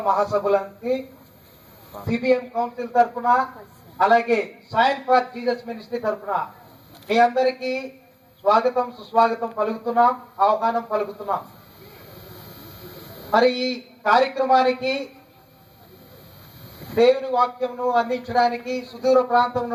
మహాసభలకి సిబిఎం కౌన్సిల్ తరఫున అలాగే సైన్ ఫర్ జీసస్ మినిస్ట్రీ తరఫున మీ అందరికీ స్వాగతం సుస్వాగతం పలుకుతున్నాం, ఆహ్వానం పలుకుతున్నాం. మరి ఈ కార్యక్రమానికి దేవుని వాక్యంను అందించడానికి సుదూర ప్రాంతం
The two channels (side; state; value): both; identical; correlation 1.00